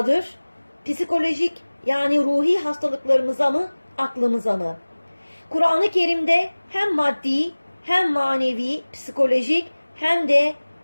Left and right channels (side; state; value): both; inverted; correlation -1.00